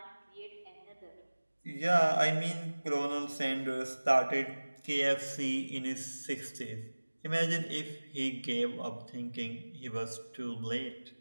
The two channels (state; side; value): inverted; both; correlation -1.00